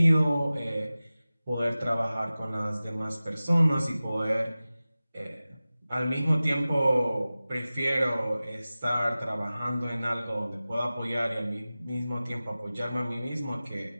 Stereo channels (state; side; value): inverted; both; correlation -0.97